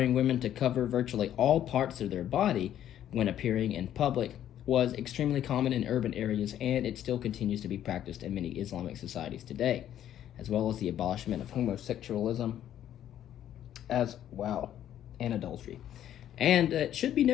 women to cover virtually all parts of their body when appearing in public was extremely common in urban areas, and it still continues to be practiced in many Islamic societies today, as well as the abolishment of homosexualism as well, and adultery. And it should be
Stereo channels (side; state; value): right; quieter; 11.1 dB